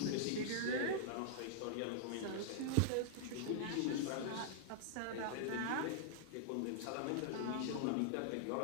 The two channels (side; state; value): both; different; correlation -0.01